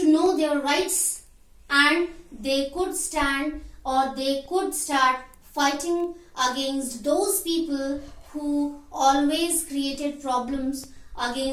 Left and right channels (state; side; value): identical; both; correlation 1.00